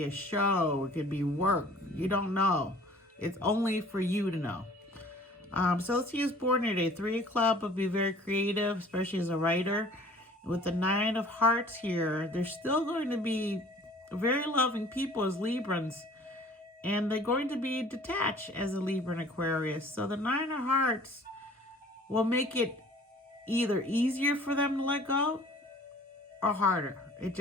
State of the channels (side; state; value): both; normal; correlation 0.51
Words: a show, it could be work. You don't know. It's only for you to know. So let's use born today. 3 of Clubs would be very creative, especially as a writer. With the 9 of Hearts here, they're still going to be very loving people as Librans. And they're going to be detached as a Libra and Aquarius. So the 9 of Hearts will make it either easier for them to let go or harder. It